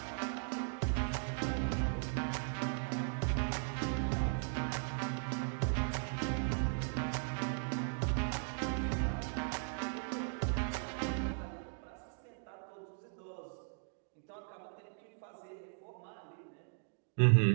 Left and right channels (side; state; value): left; silent; digital silence